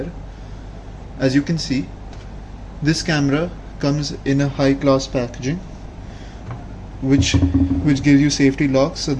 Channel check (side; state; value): both; identical; correlation 1.00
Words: As you can see, this camera comes in a high class packaging which gives you safety locks so